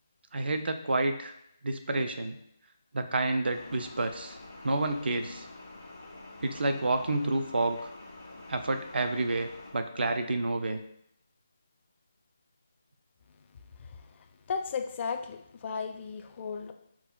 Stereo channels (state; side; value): inverted; both; correlation -0.82